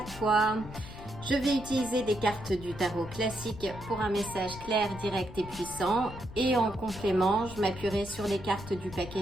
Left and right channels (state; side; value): noise; left; rumble, 14 dB below the sound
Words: toi? Je vais utiliser des cartes du tarot classique pour un message clair, direct et puissant. Et en complément, je m'appuierai sur les cartes du